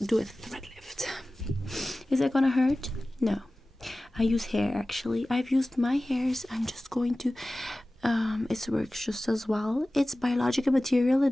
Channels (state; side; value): normal; both; correlation 0.97